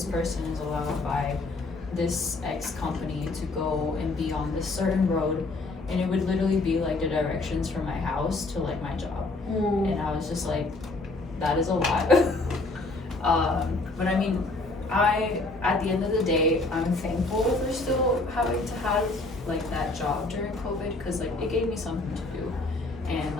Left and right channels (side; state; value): right; quieter; 3.2 dB